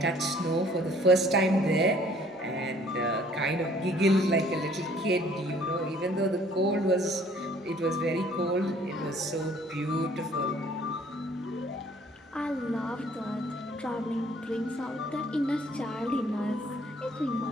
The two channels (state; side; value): normal; both; correlation 0.58